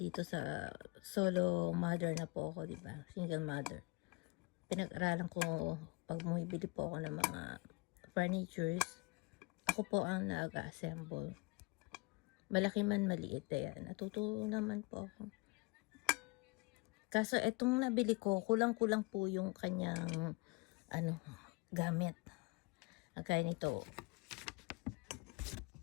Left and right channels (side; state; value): right; quieter; 27.0 dB